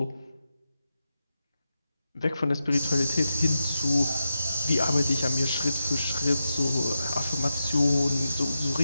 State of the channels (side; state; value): both; inverted; correlation -0.90